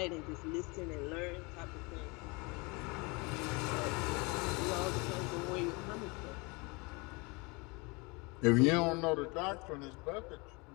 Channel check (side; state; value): right; quieter; 27.7 dB